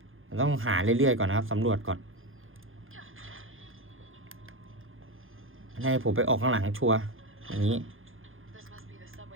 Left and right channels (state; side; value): late; left; 0.59 ms